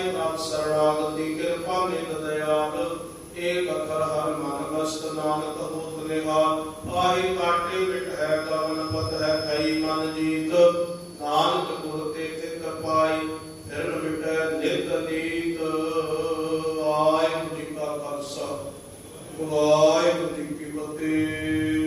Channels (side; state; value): both; identical; correlation 1.00